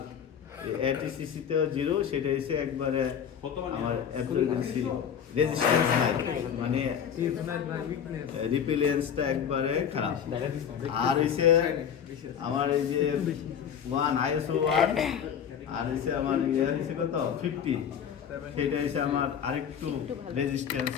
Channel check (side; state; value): right; quieter; 8.2 dB